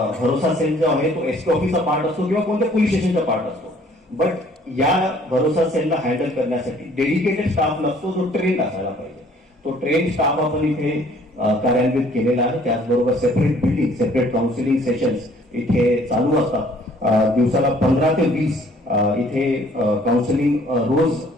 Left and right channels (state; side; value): normal; both; correlation 0.58